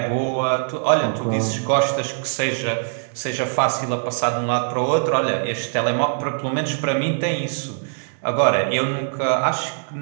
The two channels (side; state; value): left; silent; digital silence